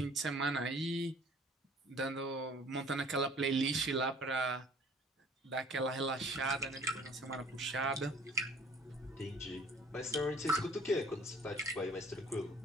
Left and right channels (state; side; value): normal; both; correlation 0.53